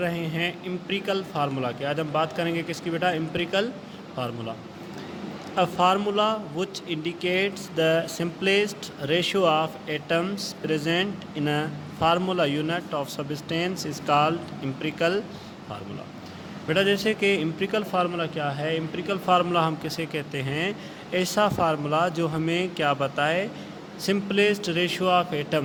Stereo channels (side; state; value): both; identical; correlation 1.00